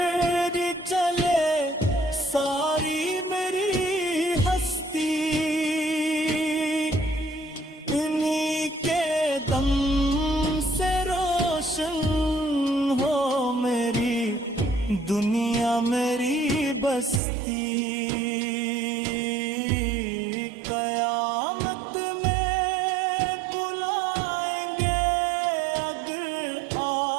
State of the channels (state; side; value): drops out; left; at 17.2 s